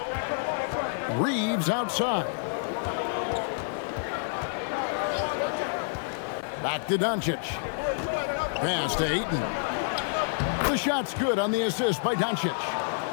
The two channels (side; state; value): right; silent; 59 dB below the other